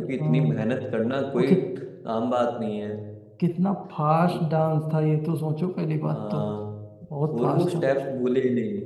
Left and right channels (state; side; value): identical; both; correlation 1.00